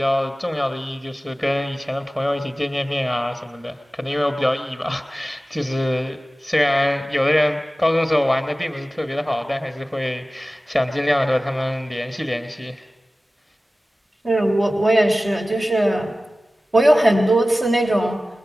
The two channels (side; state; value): both; normal; correlation 0.96